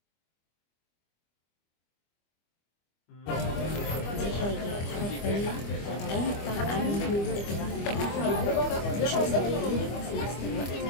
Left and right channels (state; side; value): late; right; 25 ms